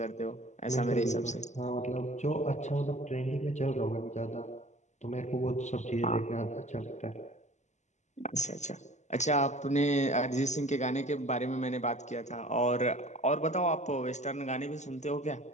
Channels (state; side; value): late; right; 0.34 ms